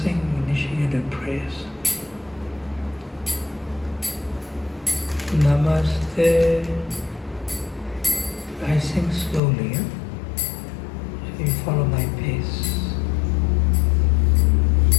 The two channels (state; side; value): drops out; right; at 9.4 s